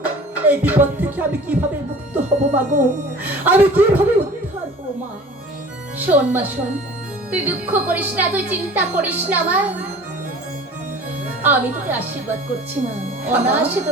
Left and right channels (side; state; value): both; normal; correlation 0.44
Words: এই বিপদ থেকে আমি কিভাবে মুক্ত হব মা গো, আমি কিভাবে উদ্ধার হব মা। শোন মা, শোন। তুই দুঃখ করিস না, তুই চিন্তা করিস না মা। আমি তোকে আশীর্বাদ করছি মা, অনায়াসে তো